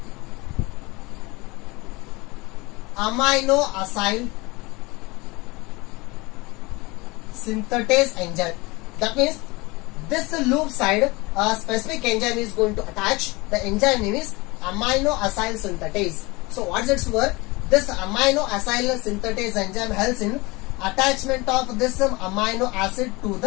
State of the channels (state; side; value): quieter; right; 23.9 dB